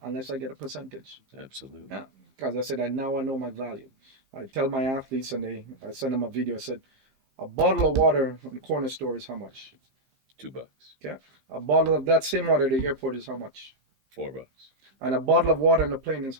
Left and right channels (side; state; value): left; late; 15 ms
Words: unless I get a percentage. Absolutely. Yeah, because I said, now I know my value. I tell my athletes, and I send them a video. I said, a bottle of water in the corner store is how much? $2. Okay. A bottle of that same water at the airport is how much? $4. And a bottle of water on the plane is